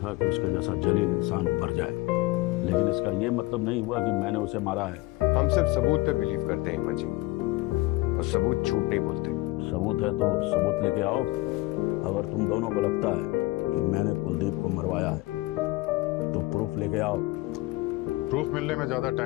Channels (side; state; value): right; quieter; 20.6 dB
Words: कि उसके जैसा जलील इंसान मर जाए, लेकिन इसका ये मतलब नहीं हुआ कि मैंने उसे मारा है। हम सिर्फ सबूत पे बिलीव करते हैं हिम्मत जी, और सबूत झूठ नहीं बोलते। सबूत है तो सबूत लेके आओ। अगर तुम दोनों को लगता है कि मैंने कुलदीप को मरवाया है तो प्रूफ लेके आओ। प्रूफ मिलने में ज्यादा